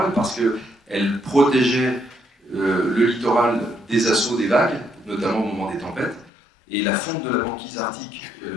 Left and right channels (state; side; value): drops out; right; at 6.3 s